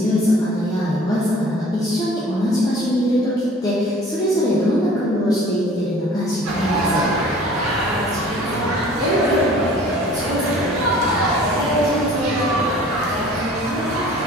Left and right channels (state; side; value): normal; both; correlation 0.49